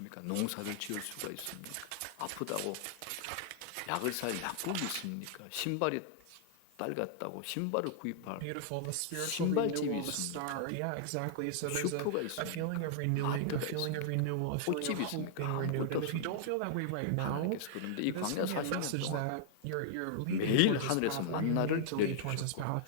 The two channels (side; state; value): both; different; correlation -0.01